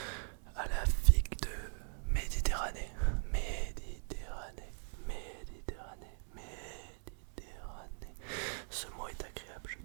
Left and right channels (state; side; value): silent; left; 51 dB below the other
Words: à la figue de Méditerranée. Ce mot est agréable, je